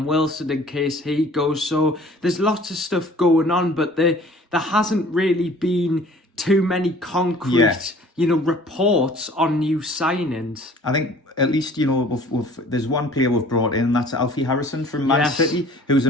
Wilson in case he goes. So there's lots of stuff going on, but there hasn't really been too many concrete, reports on new signings. I think at least, there's one player we've brought in, and that's Alfie Harrison from Man City, who's a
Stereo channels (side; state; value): both; normal; correlation 0.51